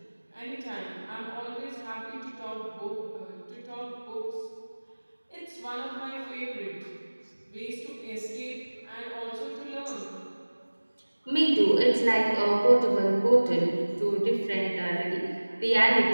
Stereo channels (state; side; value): inverted; both; correlation -1.00